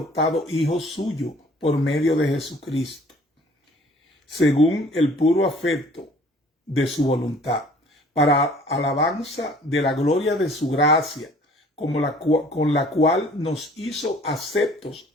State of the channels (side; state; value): both; normal; correlation 0.53